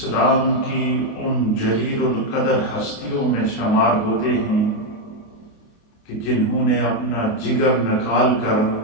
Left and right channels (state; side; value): late; right; 28 ms